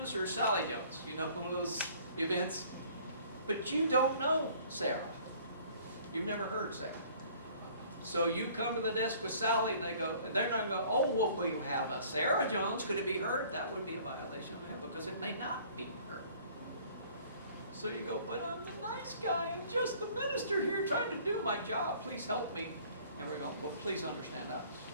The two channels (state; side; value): inverted; both; correlation -0.54